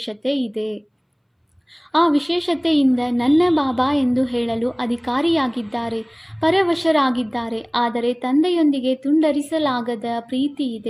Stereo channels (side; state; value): both; identical; correlation 1.00